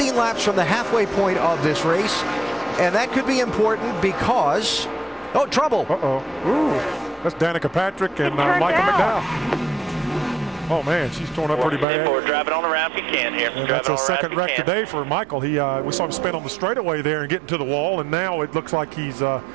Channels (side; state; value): left; drops out; at 11.9 s